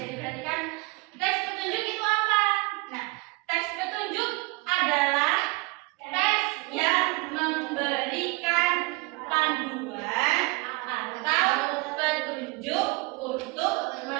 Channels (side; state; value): left; quieter; 25.8 dB